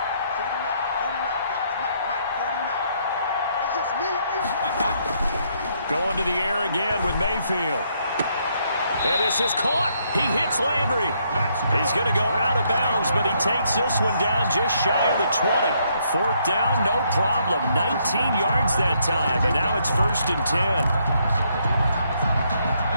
49, guys. Mike, 49. It's just me and you. Going to the air again with Mayfield. And this is caught. He hits Landry. He's going to go out of bounds, but he takes this one down just shy of the 20. 4th down, no problem. 19 yards that time, and now it's 1st and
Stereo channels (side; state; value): both; inverted; correlation -0.72